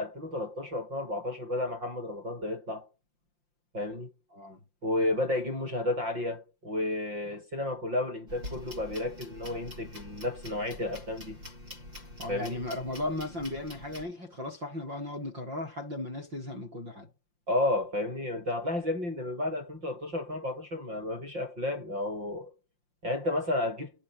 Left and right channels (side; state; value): left; late; 5.7 ms